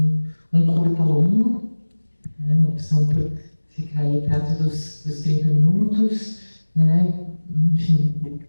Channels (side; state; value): both; inverted; correlation -1.00